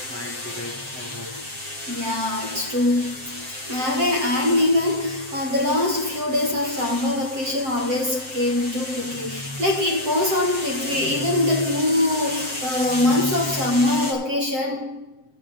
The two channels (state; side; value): late; left; 7.7 ms